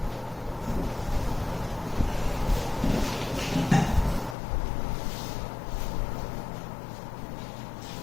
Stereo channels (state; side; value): drops out; right; at 4.4 s